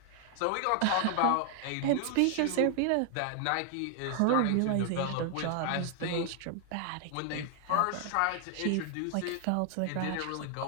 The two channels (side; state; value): both; different; correlation 0.00